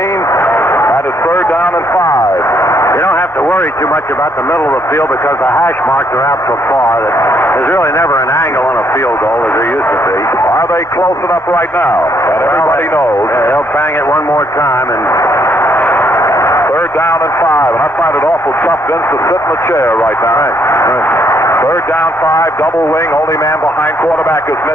it's third down and 5. You don't have to worry too much about the middle of the field because the hash marks are out so far that there's really never an angle on a field goal as there used to be. Are they close enough right now? And everybody knows. Yeah, they'll bang it one more time and... Third down and 5, and I find it awful tough, Vince, to sit in the chair right now. Right. Third down 5, double wing, only man behind quarterback is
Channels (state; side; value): normal; both; correlation 0.71